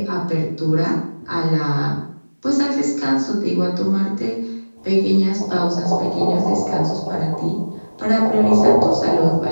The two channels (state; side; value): inverted; both; correlation -1.00